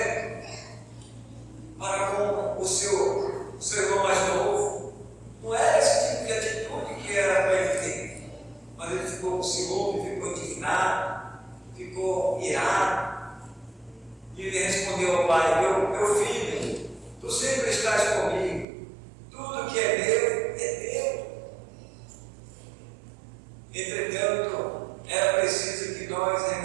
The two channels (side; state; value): left; drops out; at 18.7 s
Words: para com o seu irmão mais novo. Não era esse tipo de atitude que era para ele ter. Mas ele ficou com ciúme, ficou indignado, ficou irado. E ele respondeu ao pai: meu filho, tu sempre estás comigo, tudo que é meu é teu. Entretanto, era preciso que nós